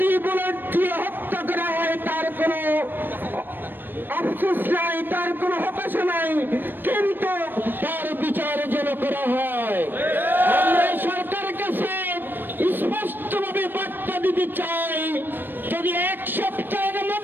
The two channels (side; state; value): left; late; 0.094 ms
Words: বুলেট দিয়ে হত্যা করা হয় তার কোনো আফসোস নাই, তার কোনো হতাশা নাই, কিন্তু তার বিচার যেন করা হয়। আমরা সরকারের কাছে স্পষ্টভাবে বার্তা দিতে চাই, যদি এক সপ্তাহের